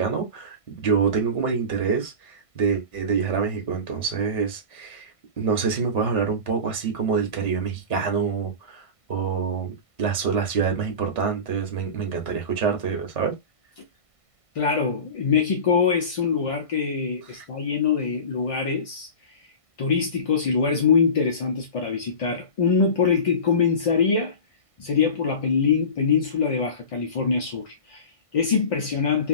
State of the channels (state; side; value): late; right; 1.5 ms